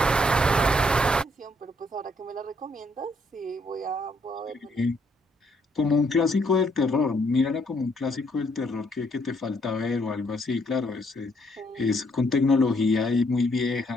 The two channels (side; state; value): both; normal; correlation 0.70